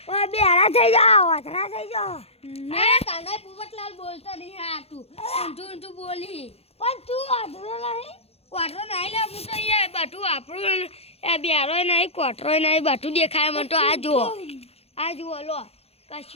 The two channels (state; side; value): late; right; 0.29 ms